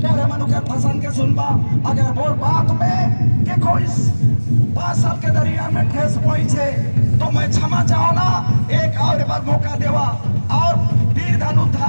मनुकर पसंद के सुनबा अगर वो बात में कि कोई 5 साल के दरिया में ठेस पहुंचे तो मैं क्षमा चाहो ना, एक और बार मौका देवा और वीर धनु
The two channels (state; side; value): inverted; both; correlation -1.00